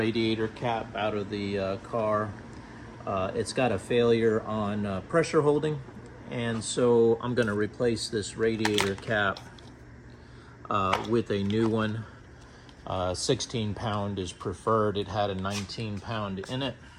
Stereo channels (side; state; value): both; identical; correlation 1.00